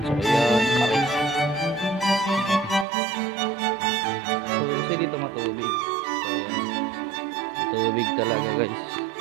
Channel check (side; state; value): left; drops out; at 2.9 s